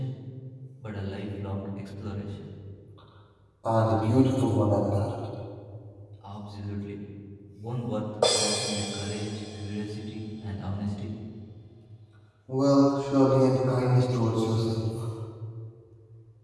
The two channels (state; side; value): identical; both; correlation 1.00